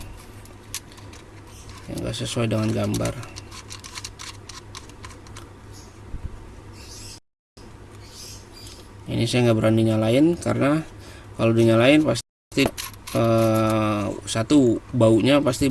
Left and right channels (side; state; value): both; identical; correlation 1.00